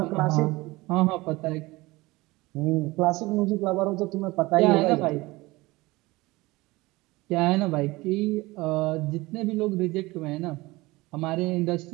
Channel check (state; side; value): quieter; left; 21.1 dB